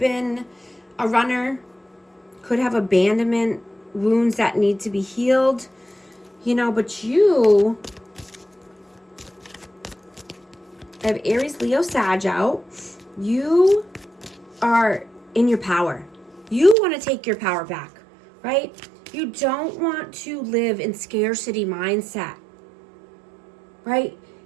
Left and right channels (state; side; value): drops out; left; at 16.8 s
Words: a runner, could have abandonment wounds that need to be healed, but you have Aries, Leo, Sag out. You are in your power. You want to take your power back, right? You don't want to live in scarcity mindset, right?